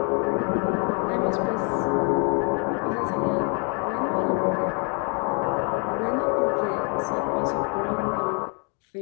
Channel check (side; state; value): right; quieter; 36.1 dB